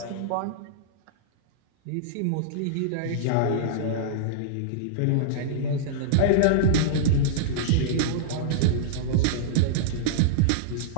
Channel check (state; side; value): different; both; correlation -0.02